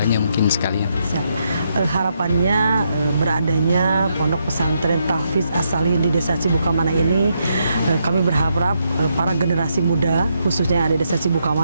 mungkin sekalian. Harapannya beradanya pondok pesantren Tahfiz As-Sholihin di desa Cibukamana ini, kami berharap para generasi muda khususnya ada di desa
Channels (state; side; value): inverted; both; correlation -0.79